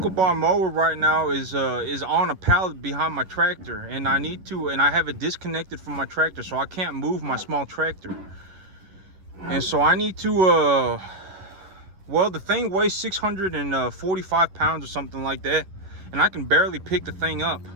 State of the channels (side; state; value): left; late; 11 ms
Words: bar mower right now is on a pallet behind my tractor, and I have it disconnected from my tractor, so I can't move my small tractor. And so I need to well, the thing weighs 645 pounds or something like that, and I can barely pick the thing up.